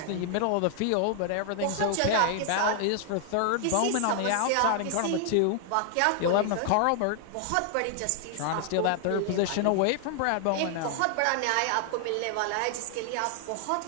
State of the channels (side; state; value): both; different; correlation 0.00